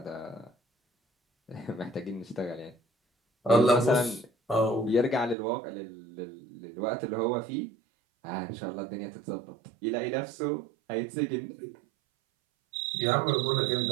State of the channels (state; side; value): drops out; left; at 5.4 s